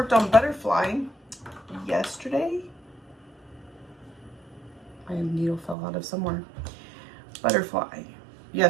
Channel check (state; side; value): drops out; left; at 5.8 s